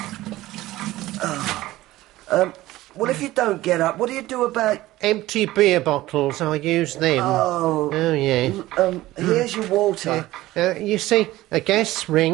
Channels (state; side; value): quieter; left; 16.8 dB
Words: Well, if you don't get up, what do you do about... Empty beer bottles, I use them. Oh, yeah. Here's your water. You see, a gas